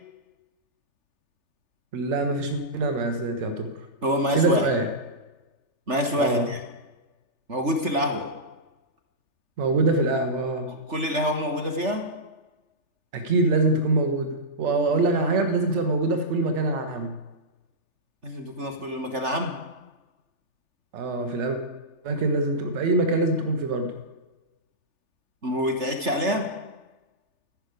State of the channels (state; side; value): late; left; 3.4 ms